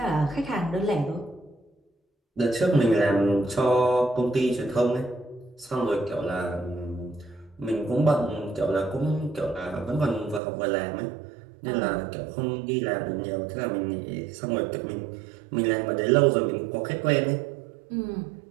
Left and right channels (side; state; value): left; drops out; at 10.4 s